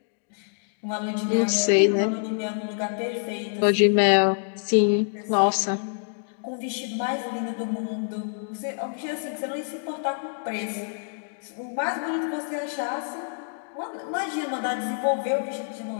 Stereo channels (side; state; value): right; silent; digital silence